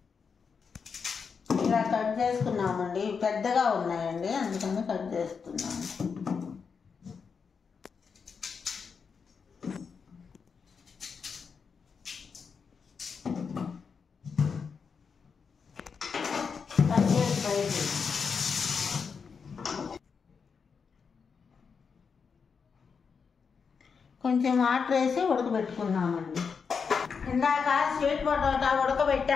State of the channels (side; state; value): right; quieter; 5.8 dB